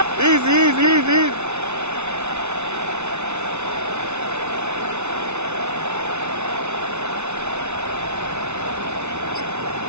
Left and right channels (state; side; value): late; left; 0.82 ms